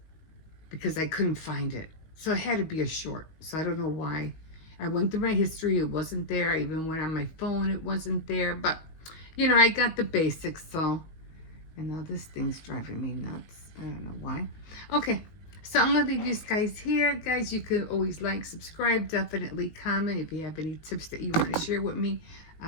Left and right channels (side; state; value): right; late; 19 ms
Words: because I couldn't find it. So it had to be a short. So I don't know why. I went through my history, it wasn't there. I even went on my phone, it wasn't there. But you know, I got the basics. So, and now this thing's driving me nuts. I don't know why. Okay, so I'm gonna leave you guys here. Guys, you can always like, subscribe, definitely comment if you have any tips that you want to share with me.